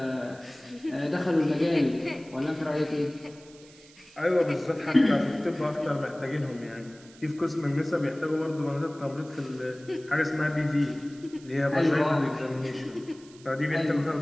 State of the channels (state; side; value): noise; right; hiss, 24 dB below the sound